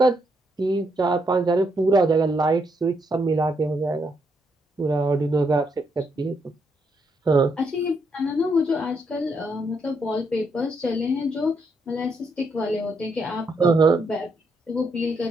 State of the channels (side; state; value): both; normal; correlation 0.77